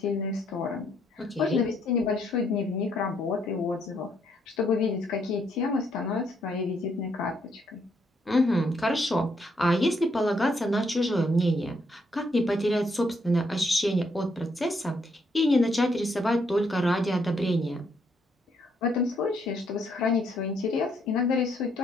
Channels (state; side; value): normal; both; correlation 0.73